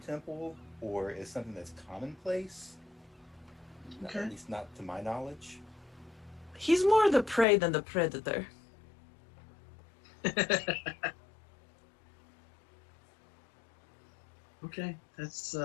or is something that's commonplace. Okay. At least not to my knowledge. He's more the prey than the predator. Okay, that's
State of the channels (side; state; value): right; drops out; at 7.5 s